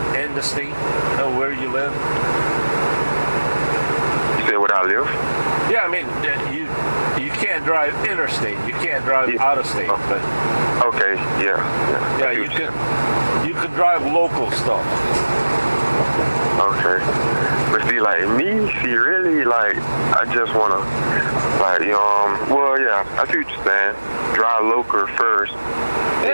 in the state, where you live. You say where I live? Yeah, I mean you can't drive interstate. You can't drive out of state, but okay, yeah. Yeah, you can drive local stuff. Okay. But see, like me, really, like, I just want to, like, well, yeah, I see what you're saying. Drive local first.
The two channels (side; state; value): both; inverted; correlation -1.00